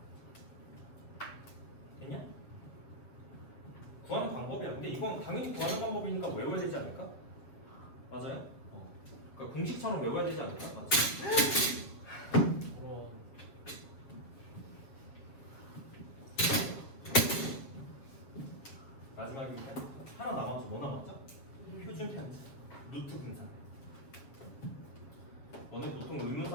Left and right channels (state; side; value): late; right; 7.3 ms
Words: 됐냐? 구하는 방법이야. 근데 이건 당연히 구하는 방법이니까 외워야 되지 않을까? 맞아요? 그러니까 공식처럼 외워야 되지 않을까? 맞지? 마지막입니다. 하나 남았죠? 뭐 남았죠? 표준 편차, 루트 분산. 너네 보통